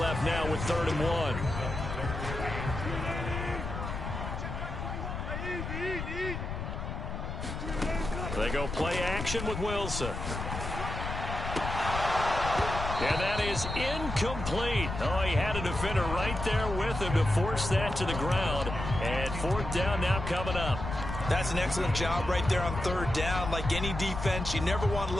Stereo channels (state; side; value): noise; left; rumble, 5 dB below the sound